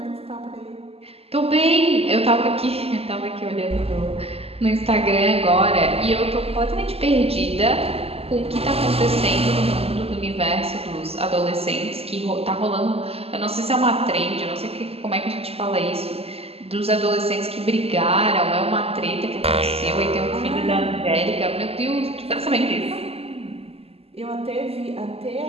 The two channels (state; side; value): late; left; 0.29 ms